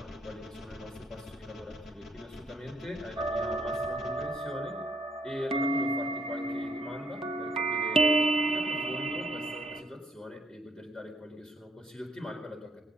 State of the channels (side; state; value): both; normal; correlation 0.69